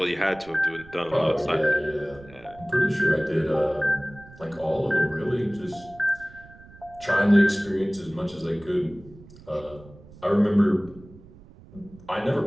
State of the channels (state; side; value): noise; right; rumble, 21 dB below the sound